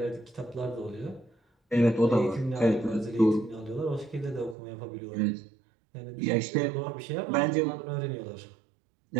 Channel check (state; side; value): drops out; left; at 4.5 s